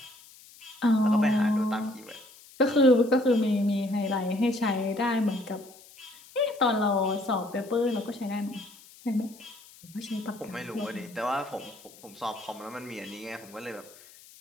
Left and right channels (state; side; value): noise; left; hiss, 22 dB below the sound